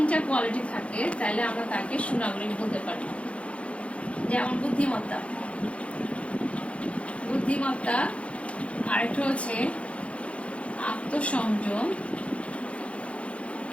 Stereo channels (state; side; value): late; right; 0.062 ms